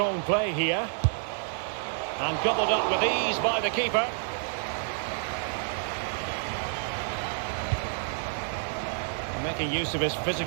play here. And gobbled up with ease by the keeper. Making use of his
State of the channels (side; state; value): left; silent; digital silence